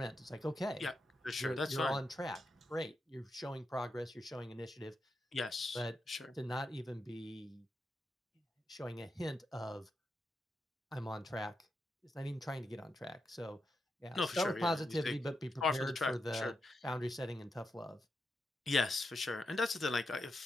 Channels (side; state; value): both; normal; correlation 0.85